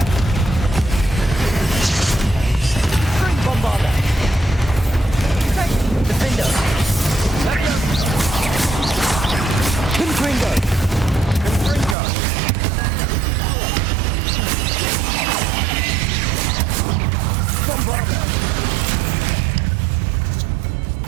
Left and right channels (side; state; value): left; drops out; at 12.0 s